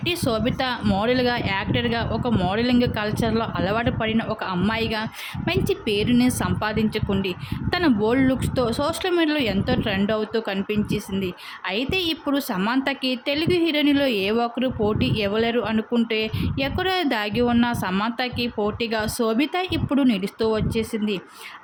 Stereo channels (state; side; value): identical; both; correlation 1.00